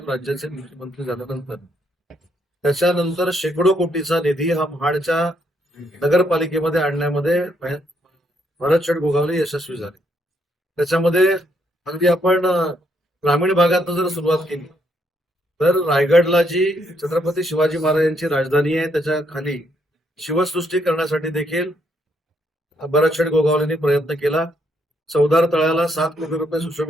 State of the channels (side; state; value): both; normal; correlation 0.74